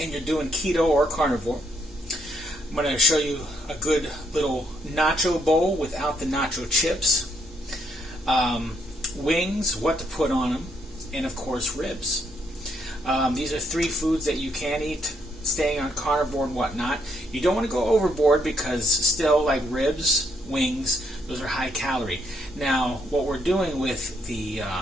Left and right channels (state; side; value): normal; both; correlation 0.73